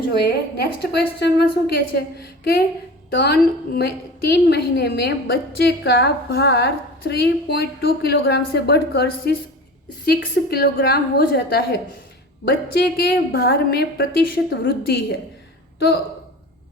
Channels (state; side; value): normal; both; correlation 0.36